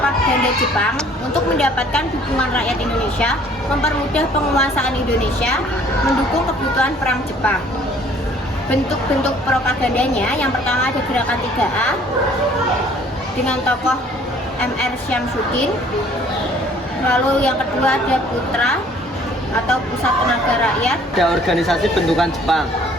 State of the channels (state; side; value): normal; both; correlation 0.57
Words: Jepang untuk mendapatkan dukungan rakyat Indonesia, mempermudah penguasaan Indonesia, mendukung kebutuhan perang Jepang. Bentuk-bentuk propagandanya, yang pertama ada gerakan 3A dengan tokoh Mr. Syamsuddin. Lalu yang kedua ada Putra atau Pusat Tenaga Rakyat. Ada organisasi bentukan Jepang.